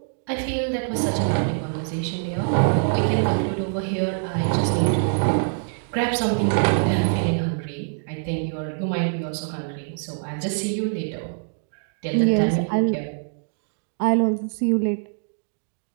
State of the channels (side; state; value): left; silent; digital silence